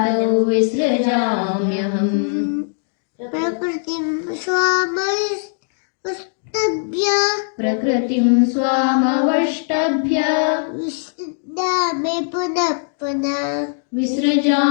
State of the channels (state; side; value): silent; right; digital silence